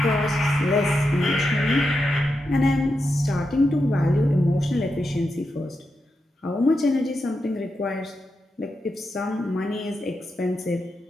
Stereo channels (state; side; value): normal; both; correlation 0.87